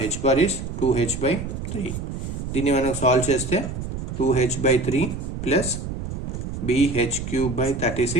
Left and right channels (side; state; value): right; noise; rumble, 6 dB below the sound